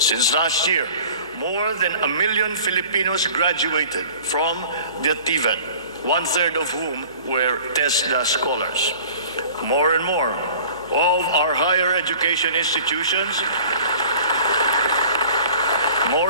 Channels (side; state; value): both; inverted; correlation -0.45